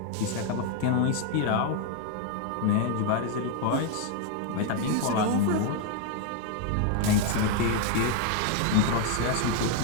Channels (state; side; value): different; both; correlation 0.01